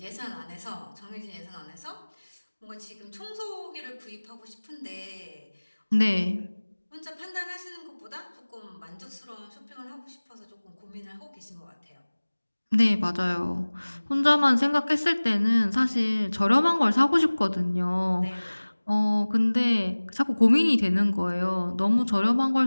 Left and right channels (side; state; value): both; inverted; correlation -1.00